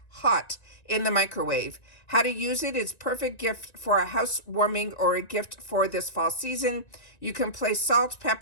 hot in the microwave. How to use it is perfect gift for a housewarming or a gift for this fall season. You can place salt,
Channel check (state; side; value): late; right; 1.9 ms